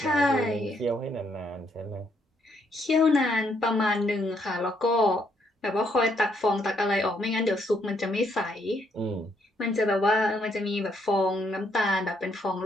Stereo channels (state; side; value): normal; both; correlation 0.72